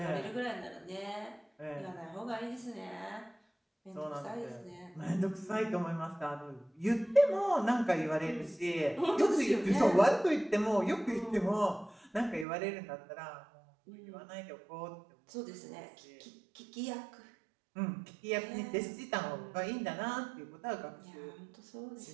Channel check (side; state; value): left; drops out; at 12.5 s